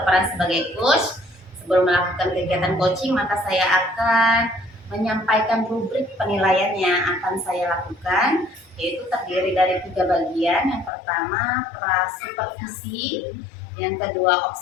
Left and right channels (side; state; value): right; drops out; at 10.9 s